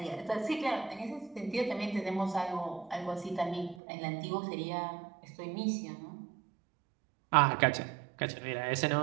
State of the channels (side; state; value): left; drops out; at 3.8 s